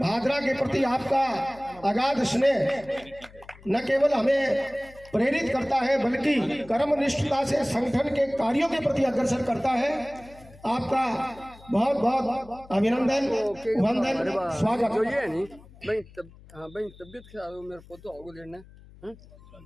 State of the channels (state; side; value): noise; left; hum, 22 dB below the sound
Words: के प्रति आपका अगाध स्नेह न केवल हमें प्रेरित करता है बल्कि कर्मनिष्ठता से संगठन के कार्यों के प्रति अग्रसर करता है। आपका बहुत बहुत अभिनंदन, वंदन, स्वागत। जो ये नहीं भाई तबियत खराब हो मेरे को तो आगे लेना है,